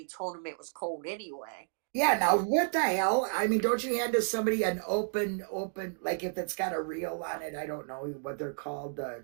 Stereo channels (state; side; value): silent; left; digital silence